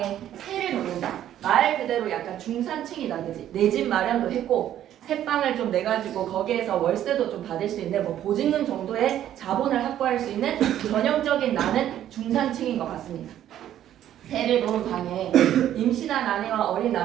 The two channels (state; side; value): quieter; left; 11.5 dB